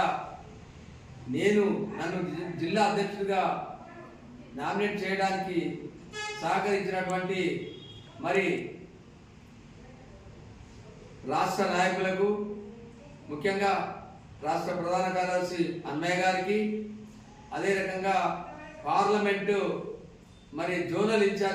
నన్ను జిల్లా అధ్యక్షుడిగా నామినేట్ చేయడానికి సహకరించినటువంటి మరి రాష్ట్ర నాయకులకు, ముఖ్యంగా రాష్ట్ర ప్రధాన కార్యదర్శి అన్నయ్య గారికి, అదే రకంగా పార్లమెంటు మరి జోనల్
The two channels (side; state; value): both; identical; correlation 1.00